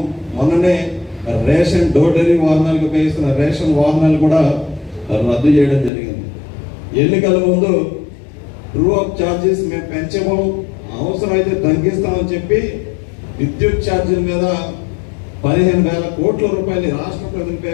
మొన్ననే రేషన్ డోర్ డెలివరీ వాహనాలకు ఉపయోగిస్తున్న రేషన్ వాహనాలు కూడా రద్దు చేయడం జరిగింది. ఎన్నికల ముందు ట్రూ అప్ ఛార్జెస్ మేము పెంచము, అవసరమైతే తగ్గిస్తామని చెప్పి విద్యుత్ ఛార్జీల మీద 15,000 కోట్ల రూపాయలు రాష్ట్ర ప్రజలపై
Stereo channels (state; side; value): drops out; right; at 5.9 s